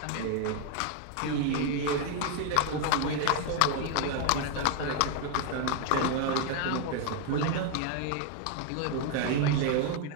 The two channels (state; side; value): different; both; correlation 0.00